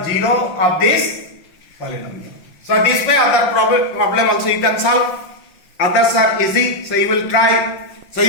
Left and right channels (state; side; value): late; right; 5.5 ms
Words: 0 of this polynomial. So this way other problem also you can solve. Others are easy. So you will try. So